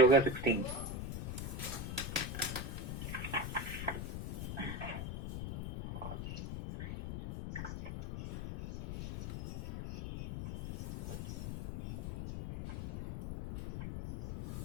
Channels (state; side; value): noise; left; rumble, 4 dB below the sound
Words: हो गया 16।